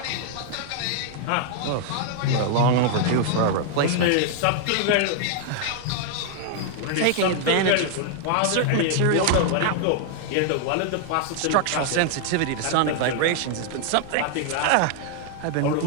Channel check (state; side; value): different; both; correlation 0.00